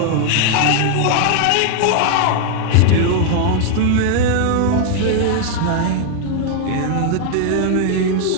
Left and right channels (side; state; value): both; different; correlation 0.00